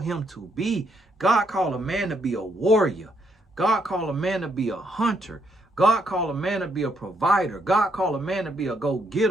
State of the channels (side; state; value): both; normal; correlation 0.74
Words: him to be. God called a man to be a warrior. God called a man to be a hunter. God called a man to be a provider. God called a man to be a